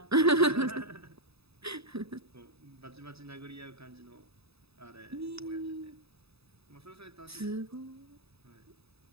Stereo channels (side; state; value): left; late; 0.78 ms